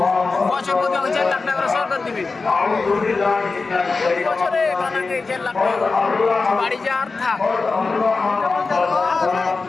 বছর প্রতি 4 লাখ টাকা করে সরকার দিবে প্রতি বছরে। কানাকে 4 লাখ টাকা বাড়ি যা আর থাক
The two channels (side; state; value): right; quieter; 4.1 dB